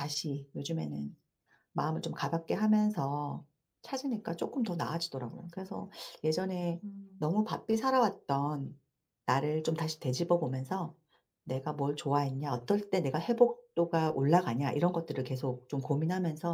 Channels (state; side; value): identical; both; correlation 1.00